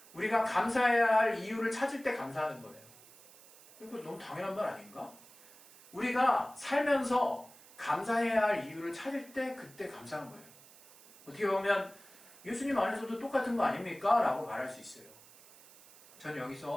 우리가 감사해야 할 이유를 찾을 때 감사하는 거예요. 이거 너무 당연한 말 아닌가? 우리가 살면서 감사해야 할 이유를 찾을 때 그때 감사한 거예요. 어떻게 보면 예수님 안에서도 똑같은 거 아닙니까? 라고 말할 수 있어요. 저는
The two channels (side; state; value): right; noise; hiss, 22 dB below the sound